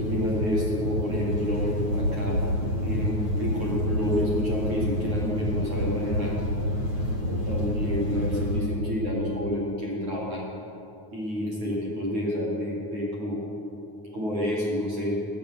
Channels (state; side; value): late; left; 9.4 ms